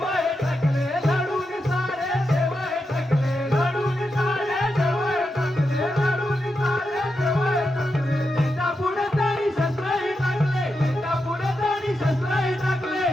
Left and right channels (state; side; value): normal; both; correlation 0.87